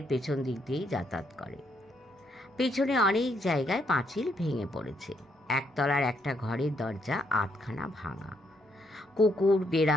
পেছন দিক দিয়েই যাতায়াত করে। পেছনে অনেক জায়গায় পাঁচিল ভেঙে পড়েছে। একতলার একটা ঘরের দরজা আধখানা ভাঙা। কুকুর,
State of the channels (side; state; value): both; normal; correlation 0.74